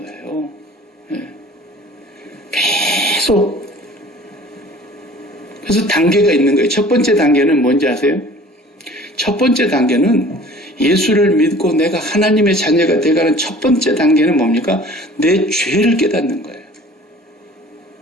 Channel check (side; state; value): both; normal; correlation 0.48